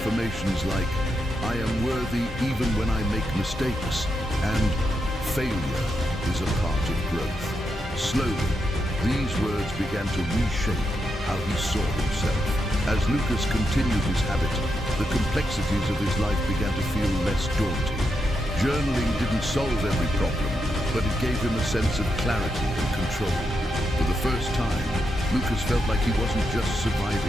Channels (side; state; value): both; normal; correlation 0.84